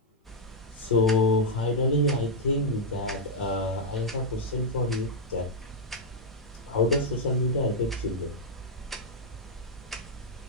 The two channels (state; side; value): normal; both; correlation -0.04